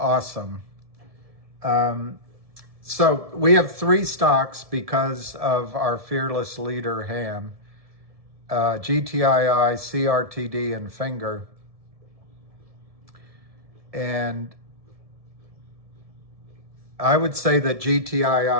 So we have 3 stocks because of our fearless leader, Ham. GTII, CRTD, and Finger. And I would say that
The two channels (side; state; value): left; late; 1.7 ms